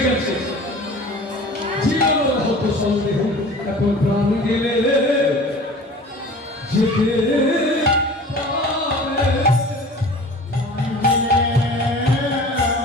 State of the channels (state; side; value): normal; both; correlation 0.42